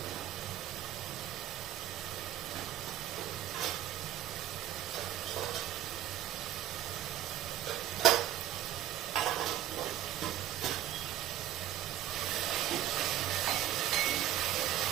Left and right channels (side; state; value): left; quieter; 12.5 dB